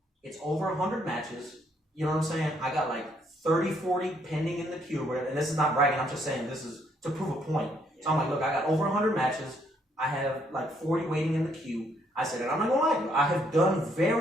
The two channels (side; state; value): both; normal; correlation 0.70